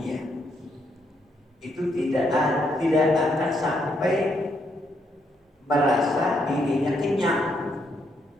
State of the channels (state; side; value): normal; both; correlation 0.75